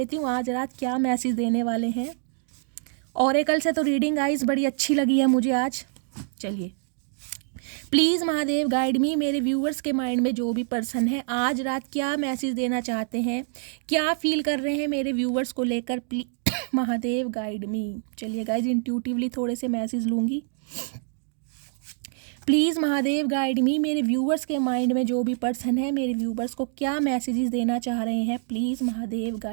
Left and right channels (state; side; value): silent; left; digital silence